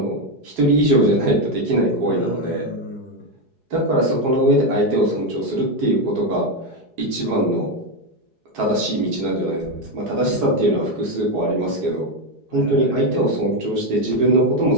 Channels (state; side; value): late; left; 4.7 ms